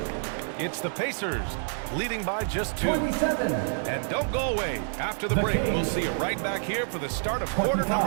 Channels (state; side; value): silent; left; digital silence